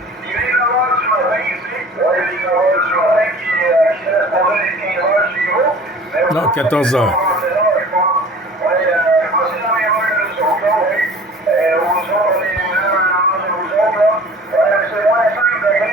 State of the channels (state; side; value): normal; both; correlation 0.45